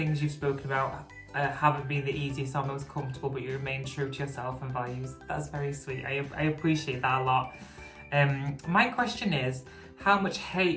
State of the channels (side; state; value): both; identical; correlation 1.00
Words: you've spoken about haven't been the easiest or most comfortable, but you remain true to yourself and values. That's very sweet. I appreciate that a lot. My question is, how much